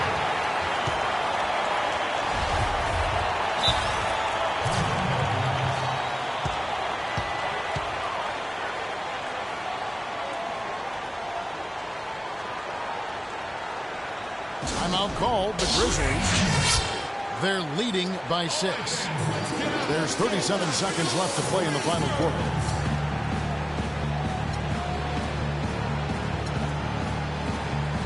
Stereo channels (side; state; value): both; identical; correlation 1.00